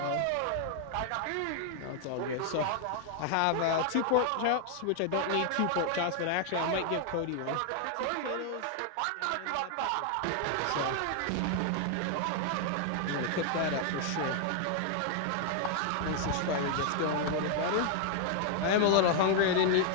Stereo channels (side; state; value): both; different; correlation 0.00